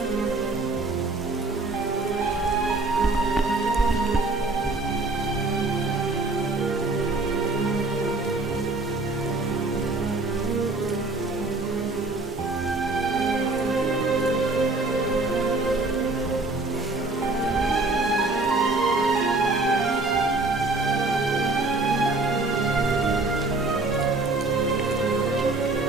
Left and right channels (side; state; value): left; quieter; 3.2 dB